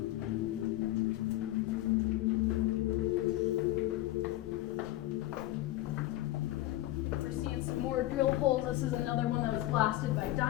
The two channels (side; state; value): right; quieter; 16.1 dB